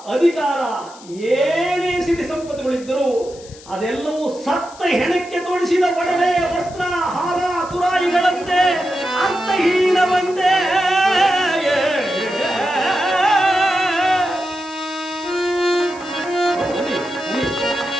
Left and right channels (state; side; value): noise; left; hiss, 21 dB below the sound